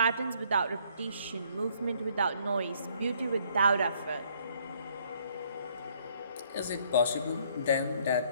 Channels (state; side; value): inverted; both; correlation -0.65